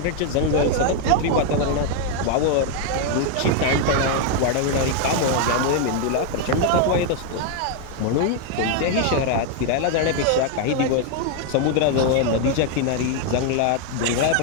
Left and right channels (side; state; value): both; different; correlation 0.00